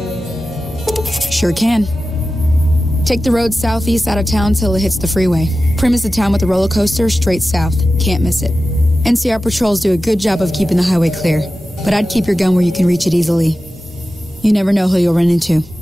Sure can. Take the road southeast out of town till it hits the freeway. Prim is the town with the roller coaster straight south. Can't miss it. NCR patrols do a good job of keeping the highway clear, but I'd keep your gun where you can reach it easily. You never know who you'll run into.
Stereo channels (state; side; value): normal; both; correlation 0.94